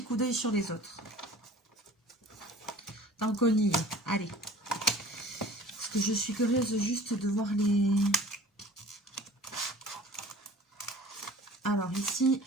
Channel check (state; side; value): normal; both; correlation 0.45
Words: coup d'œil sur les autres. Tant qu'on y est. Allez. Parce que je suis curieuse juste de voir les... Alors ici,